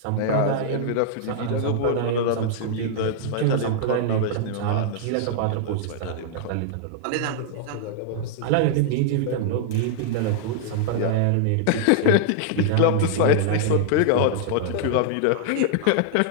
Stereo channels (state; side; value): different; both; correlation -0.01